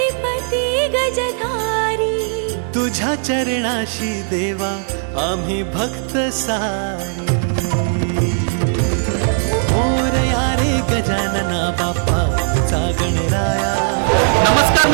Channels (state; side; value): silent; left; 67 dB below the other